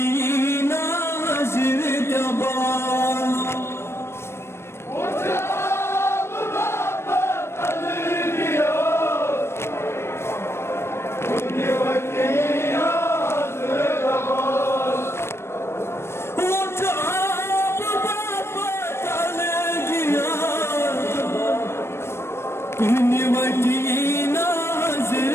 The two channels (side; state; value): right; late; 0.12 ms